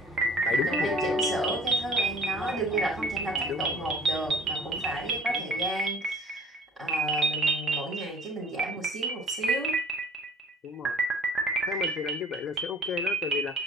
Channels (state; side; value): normal; both; correlation 0.52